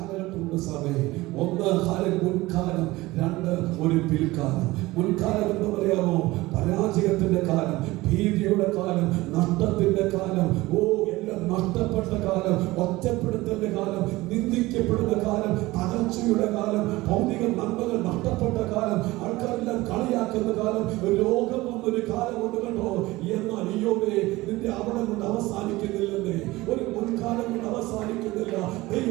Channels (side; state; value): left; quieter; 19.6 dB